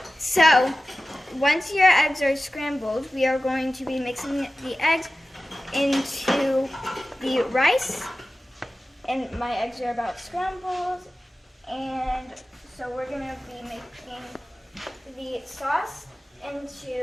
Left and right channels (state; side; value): normal; both; correlation 0.95